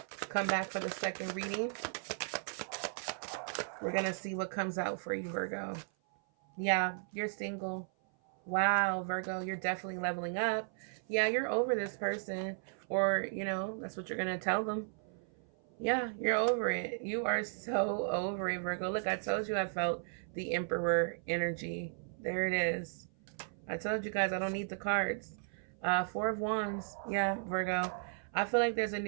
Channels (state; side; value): silent; left; 54 dB below the other